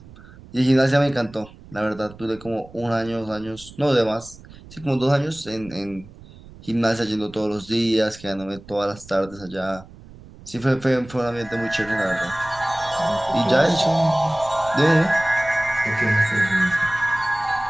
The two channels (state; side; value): noise; right; rumble, 20 dB below the sound